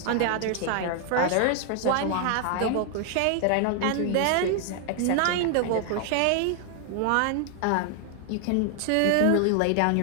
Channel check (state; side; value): different; both; correlation 0.00